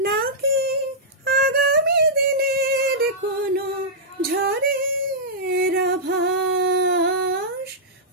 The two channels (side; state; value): both; normal; correlation -0.12